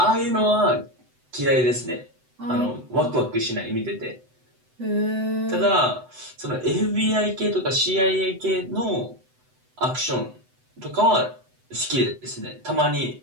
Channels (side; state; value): left; late; 7.9 ms